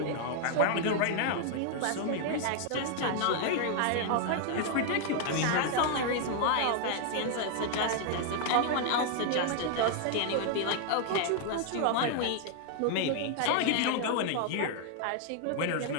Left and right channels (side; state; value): both; different; correlation 0.00